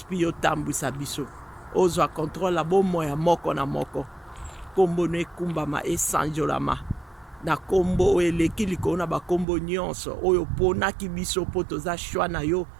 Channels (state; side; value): drops out; left; at 9.5 s